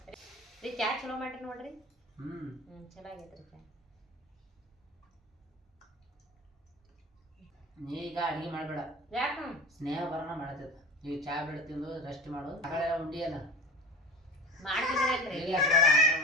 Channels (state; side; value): normal; both; correlation 0.33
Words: ರೀ ಚಾ ಚಲೋ ಮಾಡ್ರಿ ನೋಡ್ರಿ. ಚಲೋ ಆಗೈತ್ರಿ ಚಾ. ನೀ ಈಗ ಅಡಿಗೆ ಮಾಡಬೇಡ, ಯಾಕ ಸ್ನೇಹ ಬರೋಣ ಮಾಡತ್ತದ. ಈಗ ಚಾ ಬೆಳೆ ತಿಂದು ರೆಸ್ಟ್ ಮಾಡು. ಮಗಳೆಲ್ಲ ಉಂಡಿಯಲ್ಲ ಮಾಡ್ತಿದ್ರಲ್ರಿ